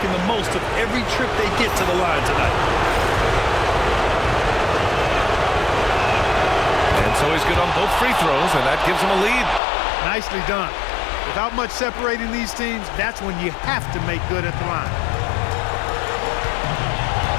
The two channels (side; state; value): right; drops out; at 9.6 s